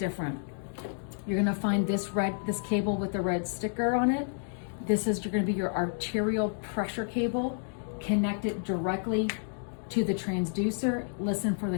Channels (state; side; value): silent; right; digital silence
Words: You're going to find this cable with the red sticker on it. This is going to be your arterial pressure cable. Connect it directly to the transducer. Listen for